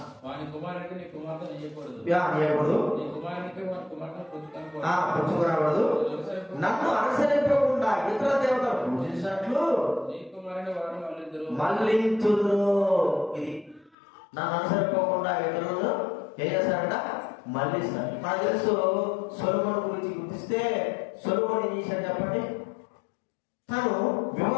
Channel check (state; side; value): drops out; right; at 14.0 s